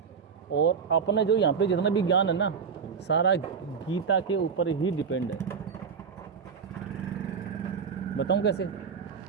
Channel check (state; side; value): quieter; left; 6.2 dB